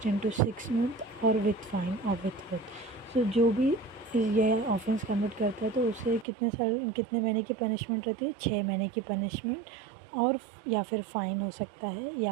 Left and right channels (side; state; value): left; drops out; at 6.2 s